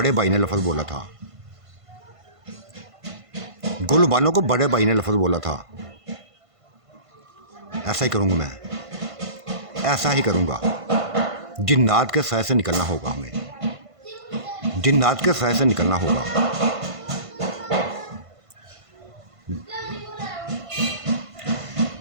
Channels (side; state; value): left; late; 1.5 ms